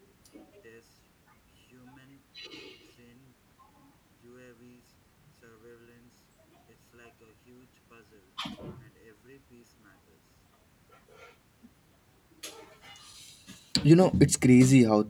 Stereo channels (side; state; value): both; identical; correlation 1.00